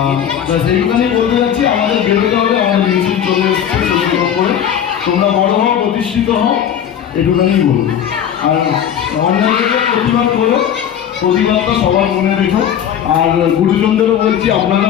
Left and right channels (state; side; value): quieter; right; 9.2 dB